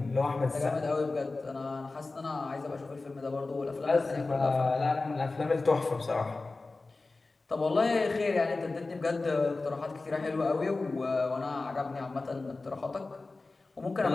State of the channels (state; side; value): quieter; right; 3.5 dB